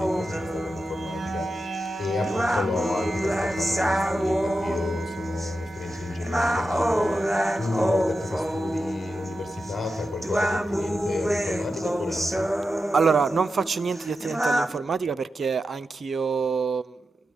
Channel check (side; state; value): both; normal; correlation 0.90